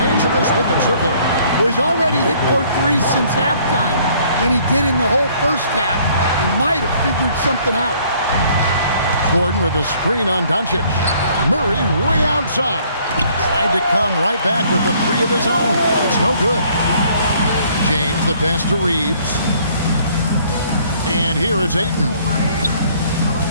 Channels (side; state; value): both; inverted; correlation -0.60